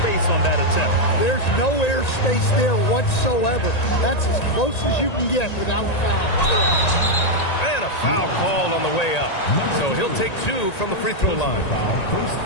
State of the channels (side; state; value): right; late; 1.9 ms